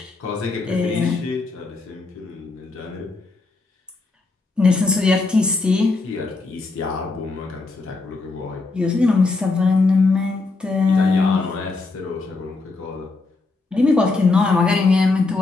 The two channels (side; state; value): right; quieter; 3.7 dB